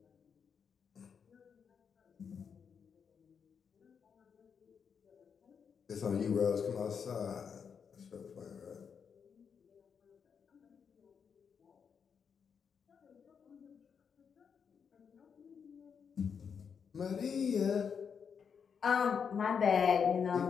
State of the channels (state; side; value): quieter; right; 6.7 dB